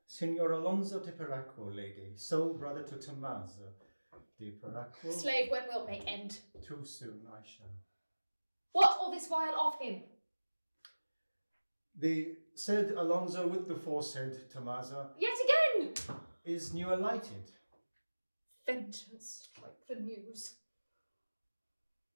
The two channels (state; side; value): inverted; both; correlation -1.00